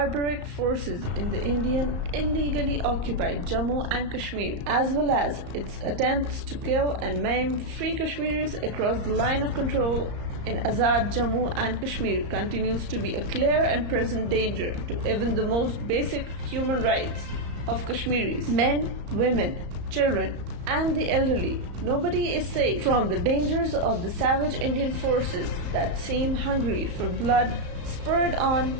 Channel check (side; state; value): left; late; 34 ms